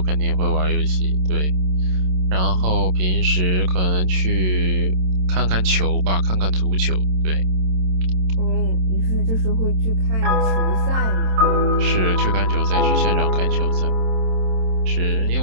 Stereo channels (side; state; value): left; late; 27 ms